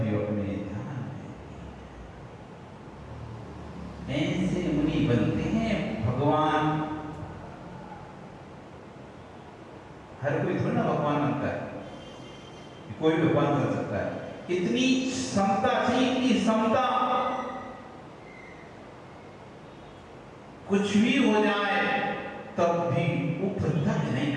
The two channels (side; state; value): both; identical; correlation 1.00